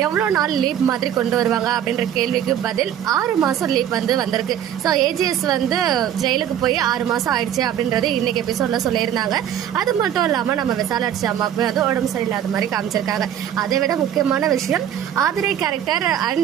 எவ்வளவு நாள் லீவ் மாதிரி கொண்டு வருவாங்க அப்படின்ற கேள்விக்கு பதில் 6 மாசம் லீவ் வந்து வந்திருக்கு. ஸோ ஏஜிஎஸ் வந்து ஜெயிலுக்கு போய் 6 மாசம் ஆயிடுச்சு அப்படின்றது இன்னைக்கு எபிசோட்ல சொல்லியிருந்தாங்க. அது மட்டும் இல்லாம நம்ம விசாலாட்சி அம்மாவுக்கு வந்து உடம்பு சரியில்லாத மாதிரி காமிச்சிருக்காங்க. அதை விட முக்கியமான விஷயம் ஆதிரை கேரக்டர்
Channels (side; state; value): left; quieter; 10.1 dB